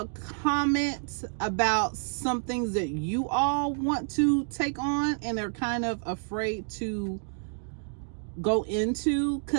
comment about some things that you all want to take on and are kind of afraid to go into,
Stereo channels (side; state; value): left; silent; digital silence